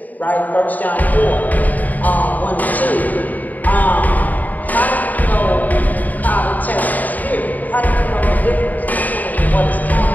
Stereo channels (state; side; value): late; right; 0.080 ms